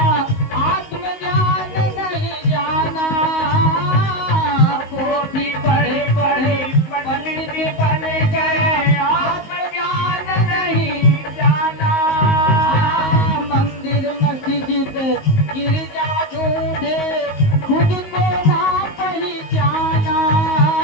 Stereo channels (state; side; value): late; right; 19 ms